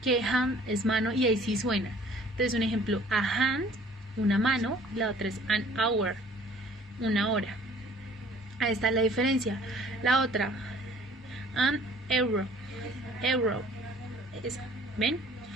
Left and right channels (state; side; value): normal; both; correlation 0.53